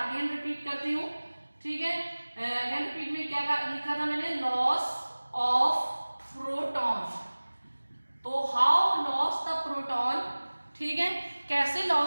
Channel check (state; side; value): inverted; both; correlation -1.00